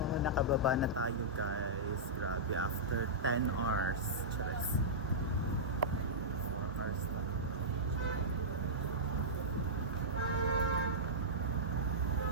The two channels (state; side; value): normal; both; correlation -0.14